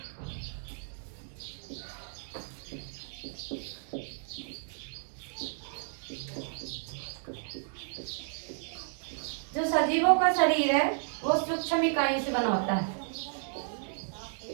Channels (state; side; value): silent; left; digital silence